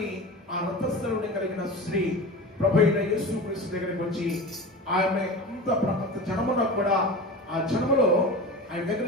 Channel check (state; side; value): normal; both; correlation 0.31